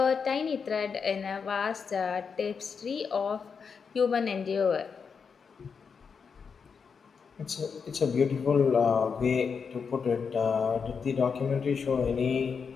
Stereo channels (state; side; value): quieter; right; 5.9 dB